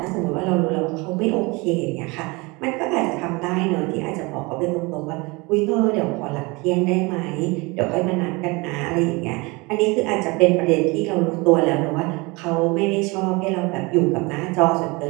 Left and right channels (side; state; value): left; quieter; 25.9 dB